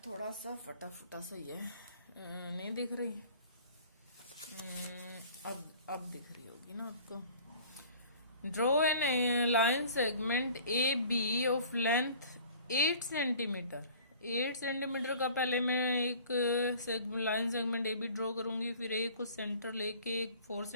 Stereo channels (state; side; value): inverted; both; correlation -0.49